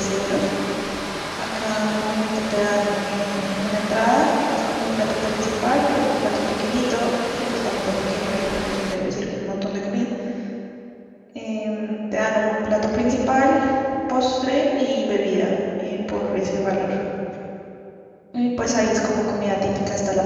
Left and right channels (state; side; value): identical; both; correlation 1.00